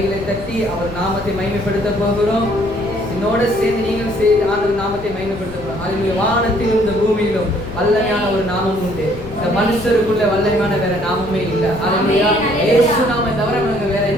தட்டி அவர் நாமத்தை மகிமைப்படுத்த போகிறோம். என்னோட சேர்ந்து நீங்கள் சேர்ந்து ஆண்டவர் நாமத்தை மகிமைப்படுத்த போகிறோம். அல்லேலூயா. வானத்திலும் இந்த பூமியிலும் வல்லமையான ஒரு நாமம் உண்டு. இந்த மனுஷருக்குள்ள வல்லமையான வேற நாமமே இல்லை. அல்லேலூயா. இயேசு நாமம் தவிர நமக்கு வேற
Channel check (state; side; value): noise; left; rumble, 15 dB below the sound